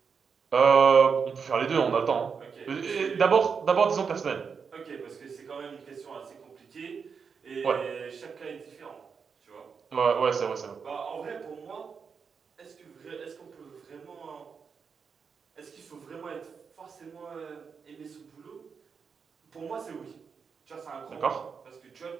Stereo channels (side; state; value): left; quieter; 5.9 dB